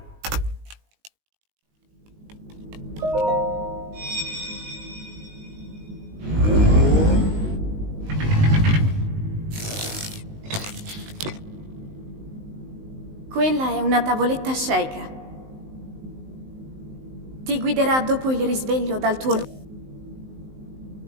Quella è una tavoletta sceicca. Ti guiderà dopo il risveglio dal tuo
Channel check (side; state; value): left; late; 19 ms